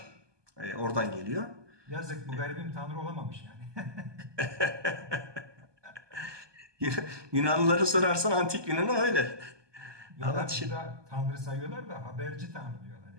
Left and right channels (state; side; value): late; left; 1.2 ms